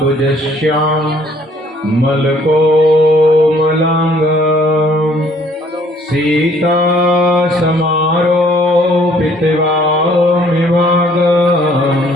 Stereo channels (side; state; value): both; normal; correlation 0.61